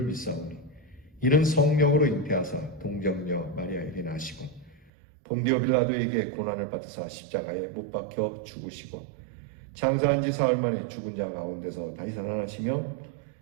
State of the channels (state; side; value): drops out; left; at 4.9 s